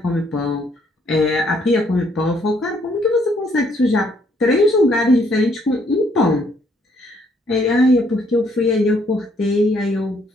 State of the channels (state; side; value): normal; both; correlation 0.68